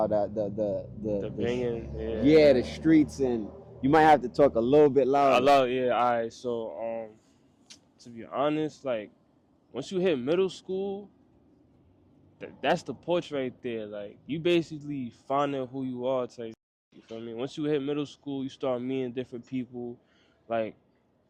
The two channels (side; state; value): both; identical; correlation 1.00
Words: the banging, yeah, the streets, and you might have to talk a little bit louder. Yeah, alright. So to be honest, like once you hit middle school, that's the porch right there. Like, you basically finding who you are. Type. You feel me? Once you hit middle school, you start meeting different people. Like,